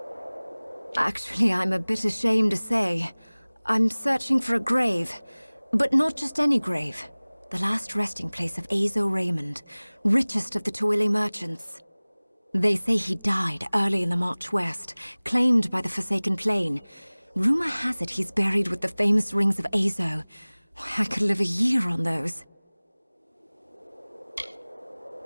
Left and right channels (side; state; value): both; inverted; correlation -1.00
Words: Actually, I'm a bit ashamed to say. I'm searching for a grave. But not just any grave. The last resting place of Azo Raymond, richest of the Tuili merchants. They say he died early in the march west, claimed by the Forsaken Plain. Rumor has it he's buried with the famous rings of Azo. I could live a year on those.